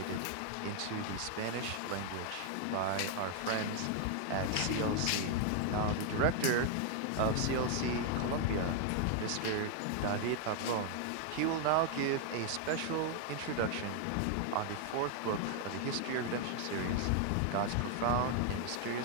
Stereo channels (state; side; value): different; both; correlation 0.00